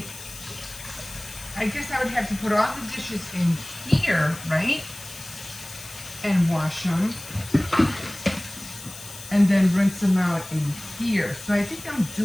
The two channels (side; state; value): left; noise; hiss, 14 dB below the sound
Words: I guess I would have to put all the dishes in here, right? And wash them. And then rinse them out in here. So I think I'm